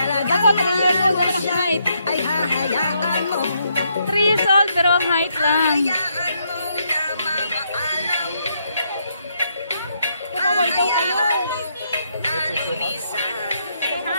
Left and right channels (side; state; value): both; inverted; correlation -0.76